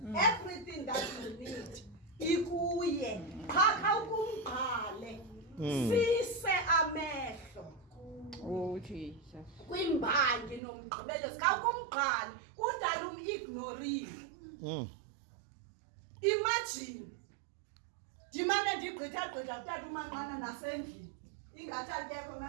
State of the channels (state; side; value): drops out; left; at 10.6 s